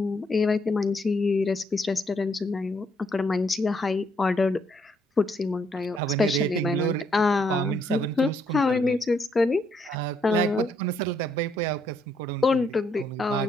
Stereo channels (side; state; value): both; normal; correlation 0.72